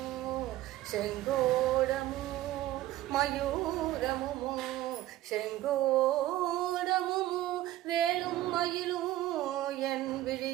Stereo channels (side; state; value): left; quieter; 14.9 dB